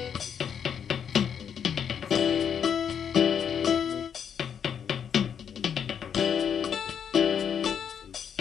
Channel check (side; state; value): right; quieter; 7.9 dB